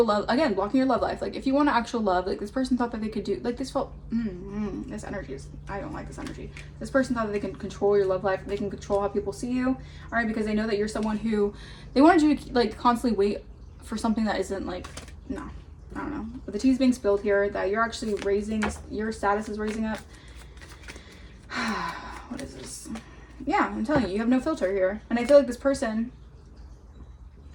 love, again, blocking your love life, like if you want actual love, like this person thought that they could do, like this felt, this energy is, I don't like this energy. This person thought that they can control your love life, they can control how people see you, all right, because they know that you're someone who, they wanted you to like constantly wait for something that isn't like, no, I don't know. But the tea's being spilled here, that you're actually your status is raising up. What is this? Yeah, I'm telling you have no filter here. And I feel like this person,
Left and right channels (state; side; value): identical; both; correlation 1.00